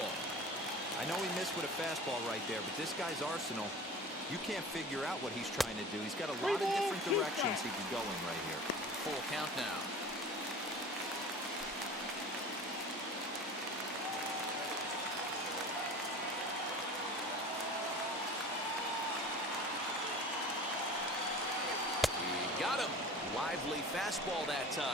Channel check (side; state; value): both; normal; correlation 0.38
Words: I know he missed with a fastball right there, but this guy's arsenal, you can't figure out what he's trying to do. He's got a lot of different directions he could go in right here. Full count now. He got him. Lively fastball that